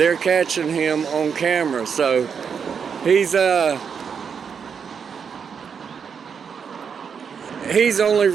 catching him on camera. So he's only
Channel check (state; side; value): quieter; left; 6.7 dB